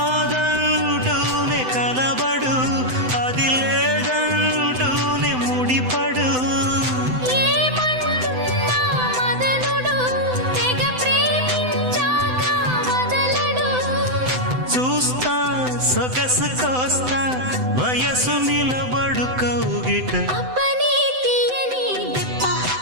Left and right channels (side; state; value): left; late; 7.9 ms